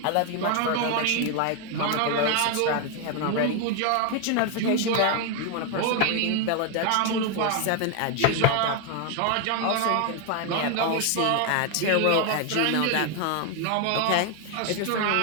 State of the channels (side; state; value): both; different; correlation 0.01